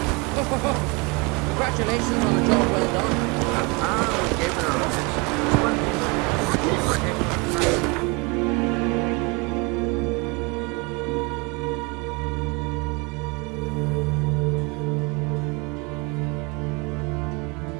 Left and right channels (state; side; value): quieter; left; 28.9 dB